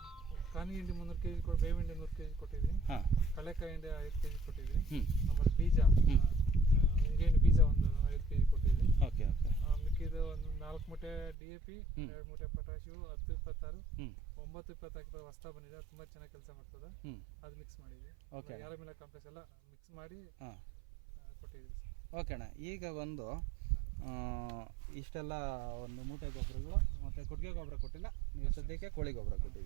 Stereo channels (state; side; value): drops out; left; at 11.4 s